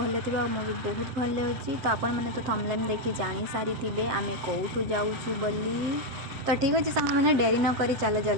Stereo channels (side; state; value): left; late; 7.8 ms